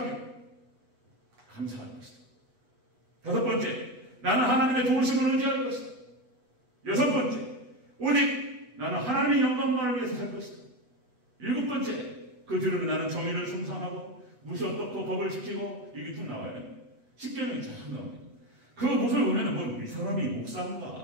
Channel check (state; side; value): late; left; 8.1 ms